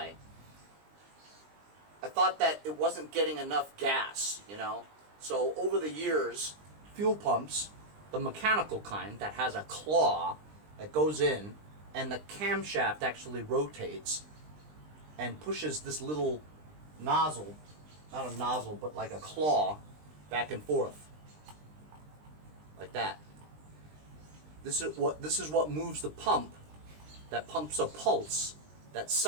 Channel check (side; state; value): left; late; 20 ms